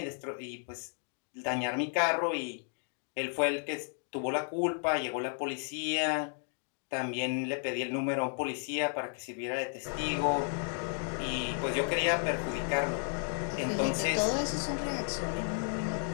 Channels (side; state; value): right; silent; 56 dB below the other